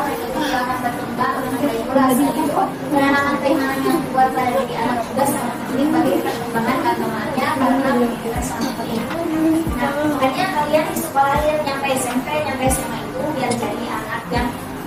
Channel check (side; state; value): both; identical; correlation 1.00